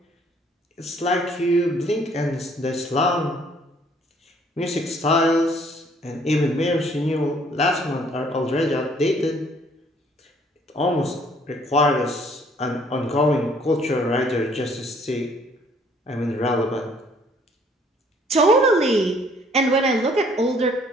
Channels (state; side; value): normal; both; correlation 0.61